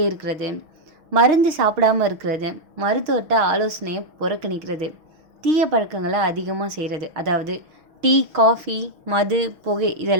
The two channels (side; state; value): left; late; 6.1 ms